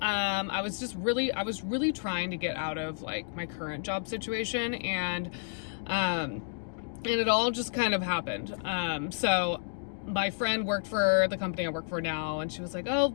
I was really trying to get out of like my current job situation, and it all just kind of happened. So my friend worked for the company I work for now, and she was like, "Oh,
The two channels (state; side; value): silent; right; digital silence